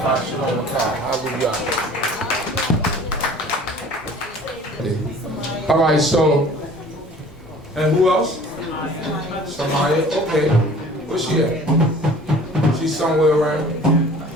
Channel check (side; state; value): both; normal; correlation 0.48